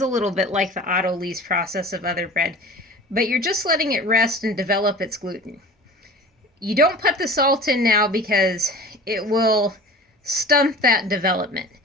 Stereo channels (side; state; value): both; normal; correlation 0.39